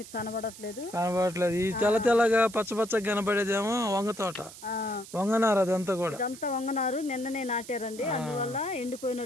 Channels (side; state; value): right; noise; hiss, 16 dB below the sound